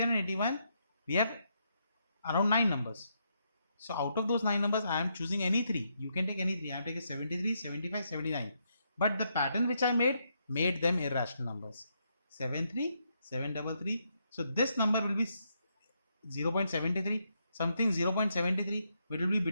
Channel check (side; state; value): both; inverted; correlation -0.78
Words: and 81, we have around 9 numbers. So out of those 9 numbers, I am choosing any 3. You can take any 3. I am taking 73, 75, 79. But the pattern which I made them irrational numbers. 73, 733. So this number will be 0.73. Something 0.73, which will be